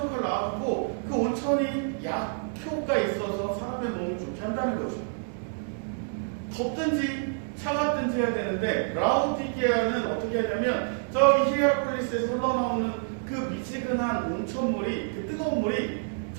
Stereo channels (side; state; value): left; silent; digital silence